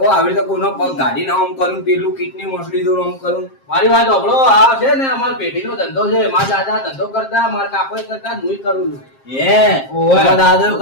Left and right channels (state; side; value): late; right; 7.5 ms